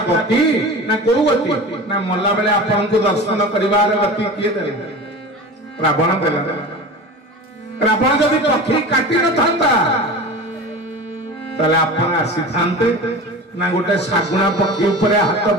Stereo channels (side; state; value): both; normal; correlation 0.33